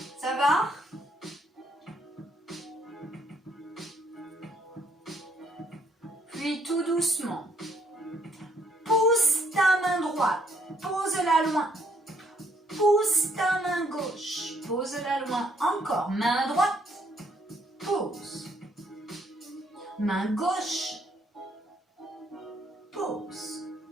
Ça va? Puis tout doucement, pousse ta main droite, pose-la loin. Pousse ta main gauche, pose-la loin. Encore, main droite, pose. Main gauche, pose.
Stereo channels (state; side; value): normal; both; correlation 0.69